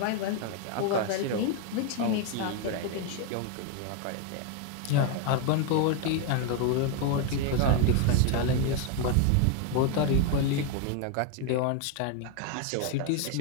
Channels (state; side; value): different; both; correlation 0.01